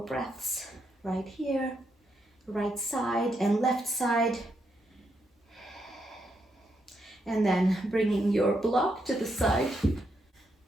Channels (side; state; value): both; normal; correlation 0.80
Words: breaths right here, right side and left side. And then bringing your block to the side.